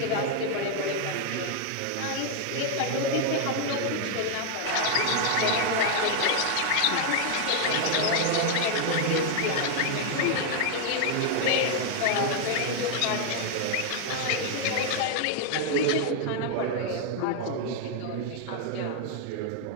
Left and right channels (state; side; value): different; both; correlation 0.00